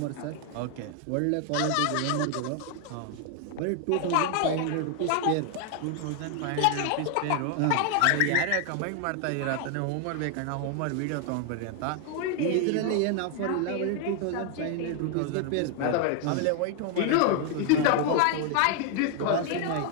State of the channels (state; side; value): different; both; correlation 0.00